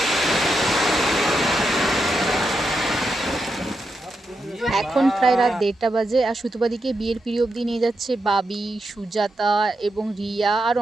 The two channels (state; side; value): normal; both; correlation 0.85